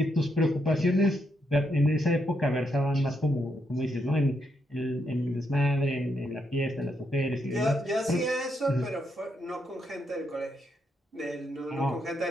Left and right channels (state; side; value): normal; both; correlation 0.79